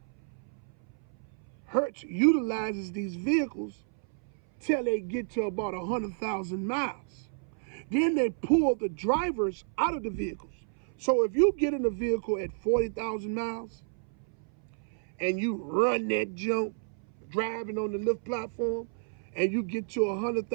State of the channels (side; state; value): left; silent; 57 dB below the other